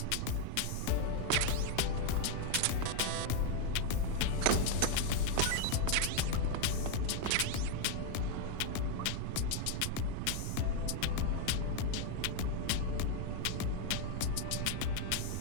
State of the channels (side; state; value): both; different; correlation 0.01